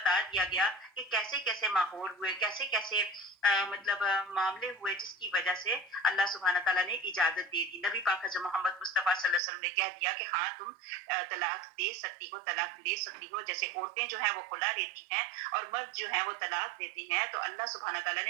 دیا گیا کہ کیسے کیسے ماحول ہوئے، کیسے کیسے معاملے ہوئے جس کی وجہ سے اللہ سبحانہ تعالیٰ نے اجازت دے دی۔ نبی پاک حضرت محمد مصطفیٰ صلی اللہ علیہ وسلم نے کہہ دیا کہ ہاں تم طلاق دے سکتی ہو، طلاق لے سکتی ہو۔ جیسے عورتیں جو ہیں وہ خلا لیتی ہیں اور مرد جو ہیں وہ طلاق دیتے ہیں، تو اللہ سبحانہ تعالیٰ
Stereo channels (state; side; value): drops out; left; at 9.4 s